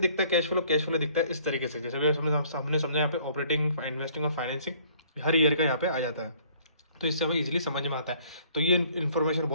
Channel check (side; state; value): both; inverted; correlation -0.58